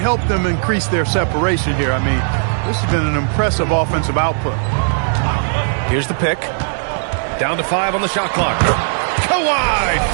them increase their separation here. I mean, this has been an impressive offensive output. Here's the pick. Down to 5 on the shot clock. Kawhi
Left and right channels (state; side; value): silent; left; 68 dB below the other